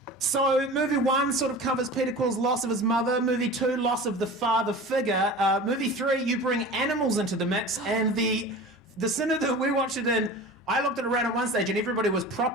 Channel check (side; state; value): both; normal; correlation 0.36